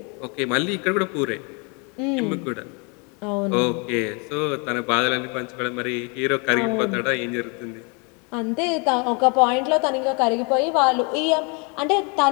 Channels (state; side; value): quieter; right; 33.2 dB